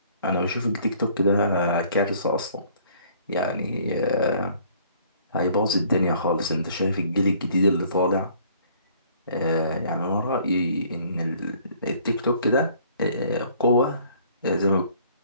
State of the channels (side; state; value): both; inverted; correlation -0.58